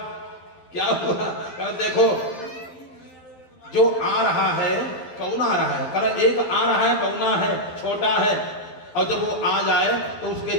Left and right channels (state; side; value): late; right; 12 ms